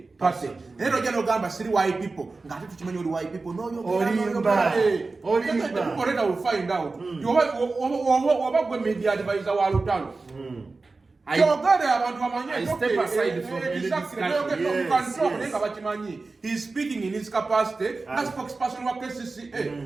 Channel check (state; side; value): quieter; left; 3.7 dB